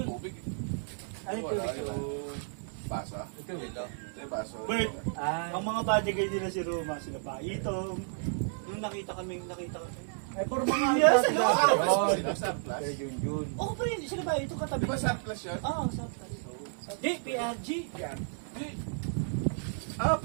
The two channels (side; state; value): left; silent; digital silence